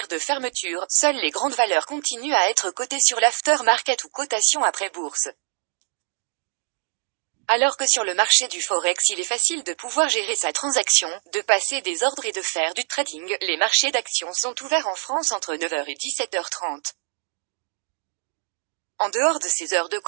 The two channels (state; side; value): silent; left; digital silence